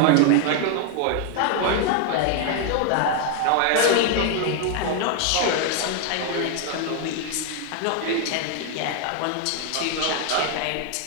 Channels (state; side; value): different; both; correlation 0.00